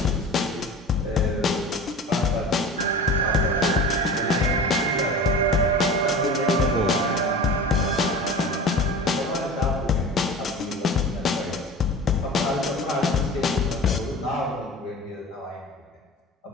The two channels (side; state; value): both; normal; correlation 0.36